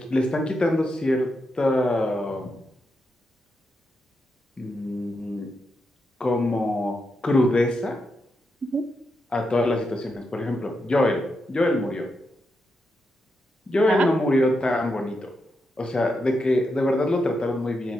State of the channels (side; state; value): both; normal; correlation 0.84